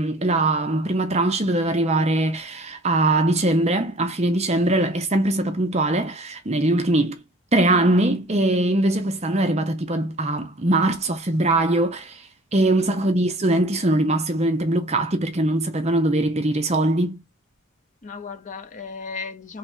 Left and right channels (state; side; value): normal; both; correlation 0.51